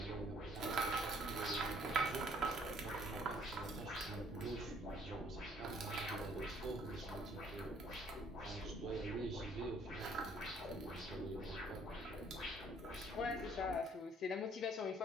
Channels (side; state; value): both; normal; correlation 0.60